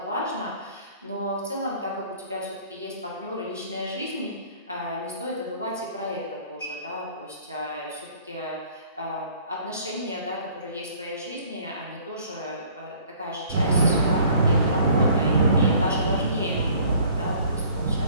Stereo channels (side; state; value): both; inverted; correlation -0.54